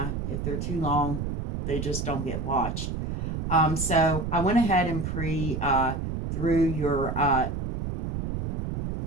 if they're too long, they just don't get watched. So I went ahead and through your,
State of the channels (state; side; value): noise; right; rumble, 3 dB below the sound